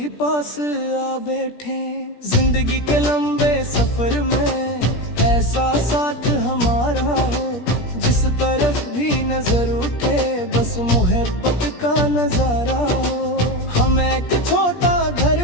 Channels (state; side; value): late; right; 17 ms